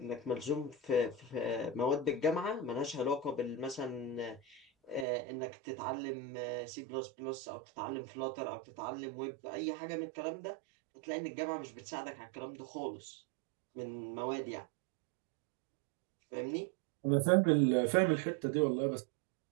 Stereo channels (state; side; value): drops out; left; at 5.1 s